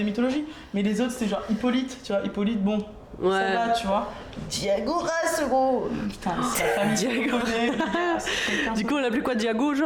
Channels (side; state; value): both; identical; correlation 1.00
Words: mythologie. Mais les autres, c'était genre Hippolyte, tu vois. Hippolyte, bon, Ouais. ça va, tu vois. Diagoras, gros. Putain, c'est la famille qui Diago. connaît. Quelqu'un Du coup, on l'appelait quoi, Diago,